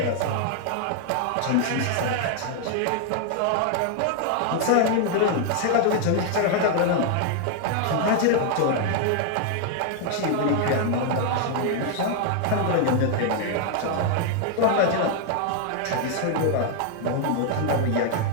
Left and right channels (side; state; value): both; different; correlation 0.00